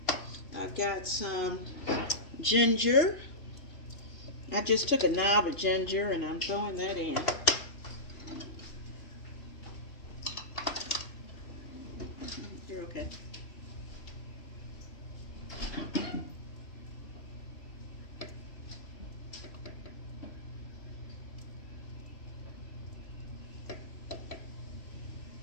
I've got some ginger. I just took a knob of ginger and I'm throwing that in. You're okay.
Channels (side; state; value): right; late; 3.0 ms